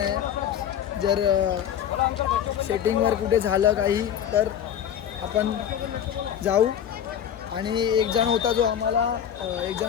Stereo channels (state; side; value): quieter; right; 9.5 dB